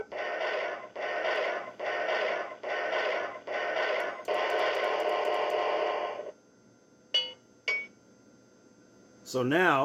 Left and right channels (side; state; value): both; identical; correlation 1.00